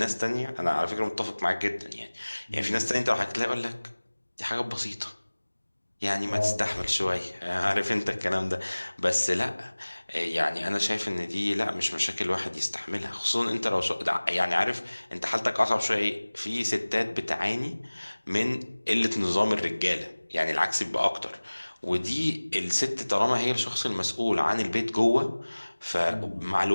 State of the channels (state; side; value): inverted; both; correlation -1.00